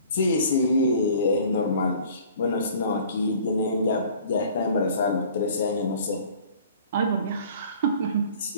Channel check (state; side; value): inverted; both; correlation -0.50